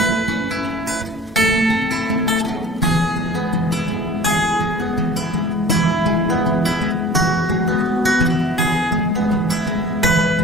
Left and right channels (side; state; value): both; normal; correlation 0.46